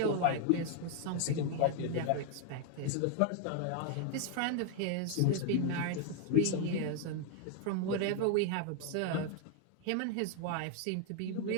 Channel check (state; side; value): different; both; correlation 0.00